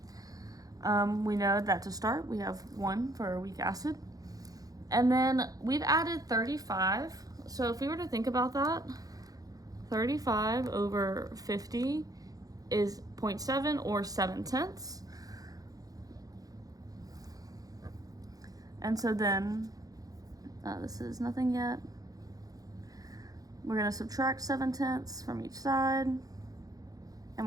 We know that to start, we have 1 for a weak acid. And then we've added 35. So if we were to think about that, 35 over 50 is 0.7 or 7/10. And so then, this is nothing yet. We're going to subtract 7/10 from each side, and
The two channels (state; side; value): late; left; 0.18 ms